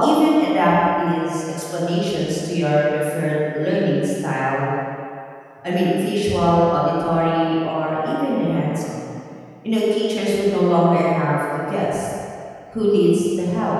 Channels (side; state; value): both; identical; correlation 1.00